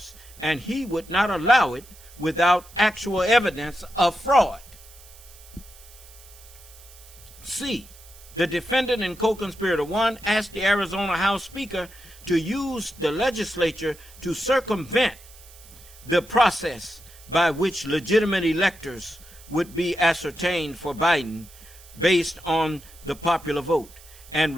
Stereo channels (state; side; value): noise; right; hiss, 22 dB below the sound